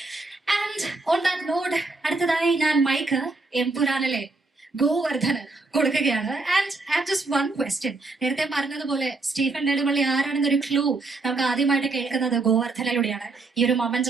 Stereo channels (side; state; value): left; quieter; 3.5 dB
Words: And on that note, അടുത്തതായി ഞാൻ മൈക്ക് എംപുരാനിലെ ഗോവർദ്ധന് കൊടുക്കുകയാണ്. And have just one question. നേരത്തെ പറഞ്ഞതുപോലെ സ്റ്റീഫൻ നെടുമ്പള്ളി ആരാണെന്നൊരു ക്ലൂ നമുക്ക് ആദ്യമായിട്ട് കേൾക്കുന്നത് ഗോവർദ്ധനിലൂടെയാണ്. ഈ ഒരു